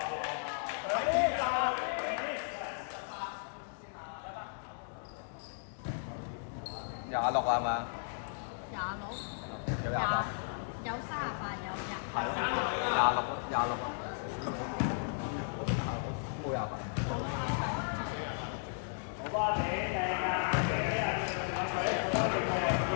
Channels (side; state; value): right; silent; digital silence